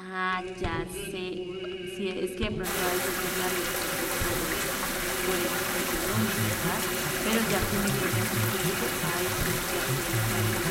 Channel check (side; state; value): both; identical; correlation 1.00